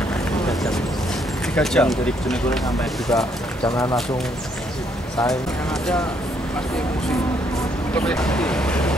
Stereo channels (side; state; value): both; normal; correlation 0.70